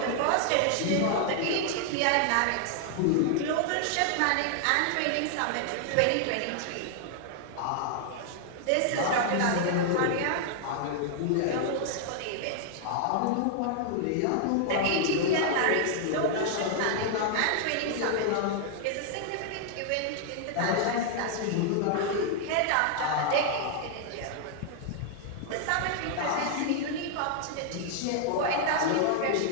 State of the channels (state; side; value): different; both; correlation 0.00